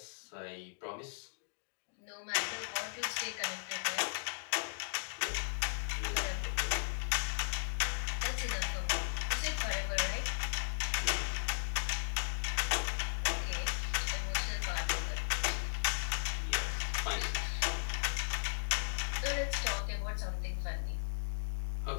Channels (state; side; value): silent; right; digital silence